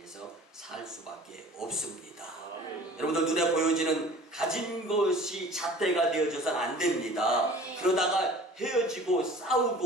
살 수밖에 없습니다. 여러분들 눈에 보여지는 가진 것이 잣대가 되어져서는 안 됩니다. 그러다가 헤어지고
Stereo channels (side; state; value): both; normal; correlation 0.45